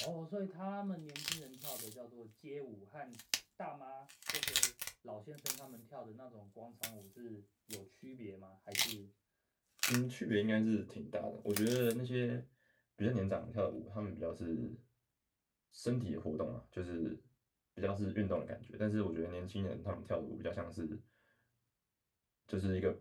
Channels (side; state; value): both; identical; correlation 1.00